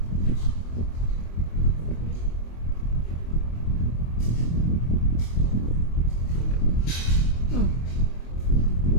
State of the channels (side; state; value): right; late; 25 ms